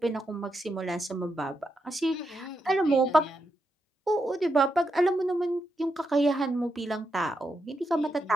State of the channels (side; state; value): both; normal; correlation 0.84